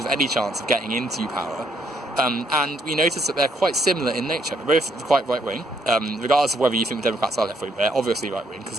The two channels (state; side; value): normal; both; correlation 0.70